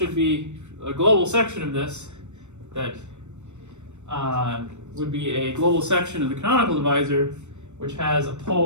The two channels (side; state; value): left; late; 0.83 ms